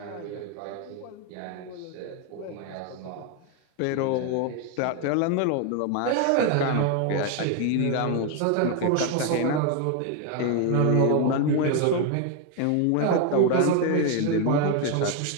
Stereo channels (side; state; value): both; different; correlation 0.01